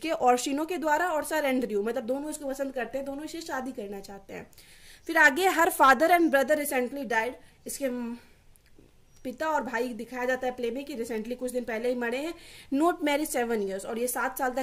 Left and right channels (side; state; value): both; identical; correlation 1.00